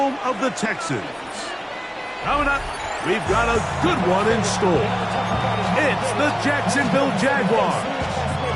of the Texans. Coming up, we've got a good one in store. It's the Jacksonville Jaguars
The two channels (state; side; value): identical; both; correlation 1.00